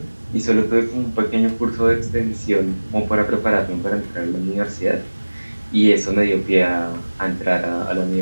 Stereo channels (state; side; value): inverted; both; correlation -1.00